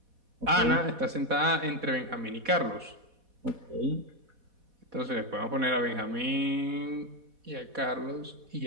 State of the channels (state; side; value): late; left; 4.1 ms